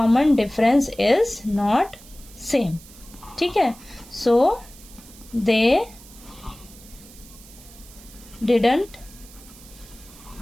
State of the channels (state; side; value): noise; right; hiss, 21 dB below the sound